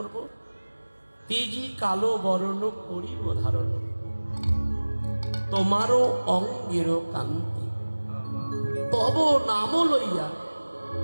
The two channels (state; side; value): inverted; both; correlation -1.00